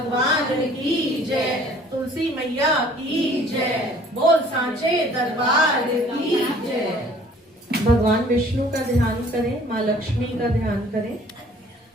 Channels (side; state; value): both; normal; correlation 0.54